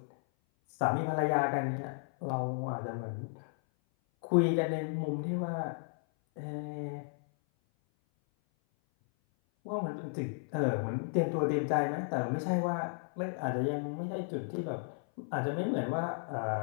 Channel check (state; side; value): silent; right; 55 dB below the other